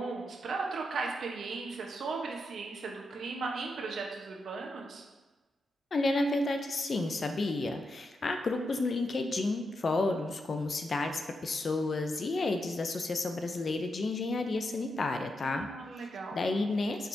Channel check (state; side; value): normal; both; correlation 0.85